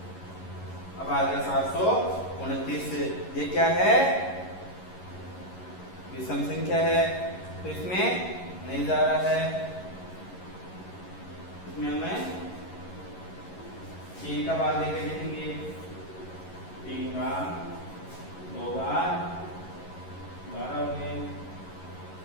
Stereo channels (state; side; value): late; right; 11 ms